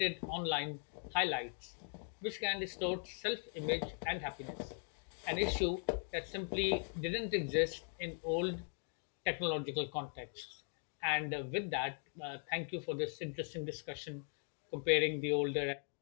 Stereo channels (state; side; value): silent; right; 51 dB below the other